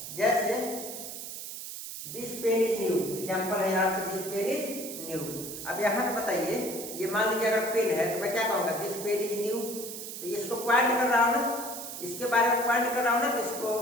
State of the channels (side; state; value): right; noise; hiss, 9 dB below the sound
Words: जैसे this pen is new, example है यहाँ पे, दिस पेन इज न्यू। अब यहाँ पे बताइए, ये मान लीजिए अगर पेन है तो मैं क्या कहूँगा, दिस पेन इज न्यू। तो ये इसको पॉइंट कर रहा हूँ ना, इसके बारे में पॉइंट कर रहा हूँ ना, तो इसको